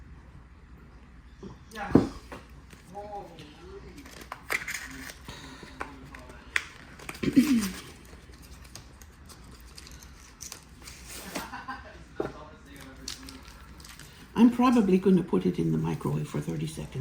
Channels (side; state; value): both; identical; correlation 1.00